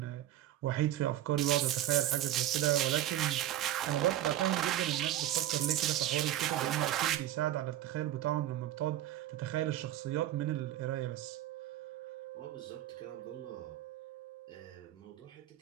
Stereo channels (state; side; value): quieter; left; 12.9 dB